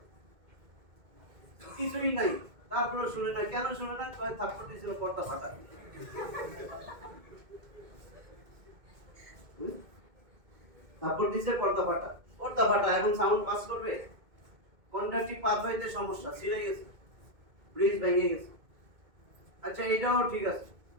কিছুই নাই, তারপরে শুনে না। কেন শুনে না? থাপ্পড় দিয়েছিল পর্দা ফাটা, থাপ্পড় দিয়েছে পর্দা ফাটা, পর্দা ফাটা, এখন সাউন্ড পাস করবে? কন্ডাকটিভ পাথওয়েতে সমস্যা, ছিঁড়ে গেছে, ব্রিজ ভেঙে গেছে। আচ্ছা এটাও ঠিক আছে,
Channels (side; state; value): left; late; 2.2 ms